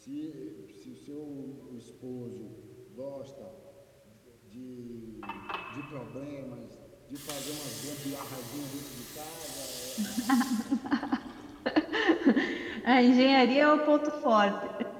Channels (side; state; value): both; identical; correlation 1.00